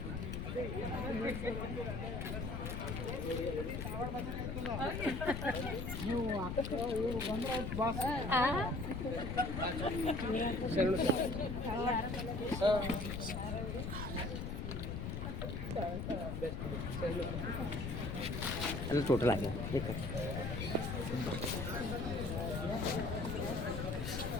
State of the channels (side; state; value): left; noise; rumble, 3 dB below the sound